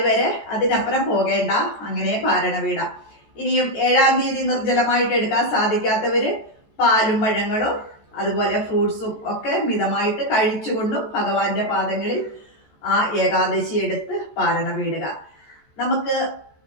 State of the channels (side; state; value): right; late; 14 ms